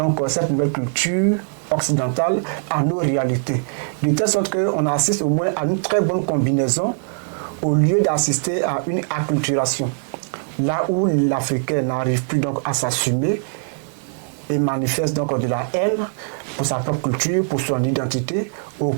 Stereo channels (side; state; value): left; silent; digital silence